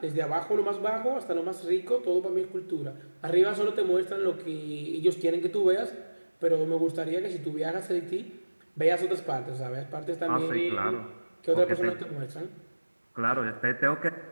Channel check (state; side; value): inverted; both; correlation -1.00